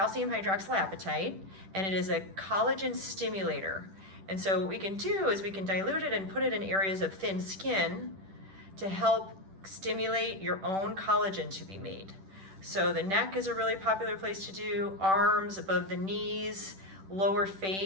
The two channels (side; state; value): left; late; 10 ms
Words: hydroxylapatite, and it is a collagen stimulator. And so what we can do is we can dilute it and put it in areas of thin skin to help stimulate your own collagen to be made. So the neck is a really popular place to do, arms, above the knees, lower